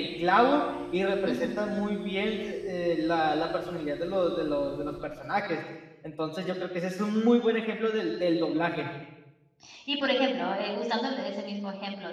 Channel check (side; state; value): both; identical; correlation 1.00